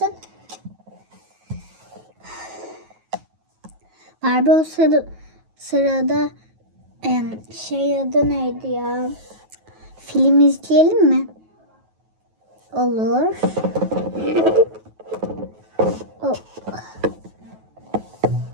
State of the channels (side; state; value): left; late; 9.3 ms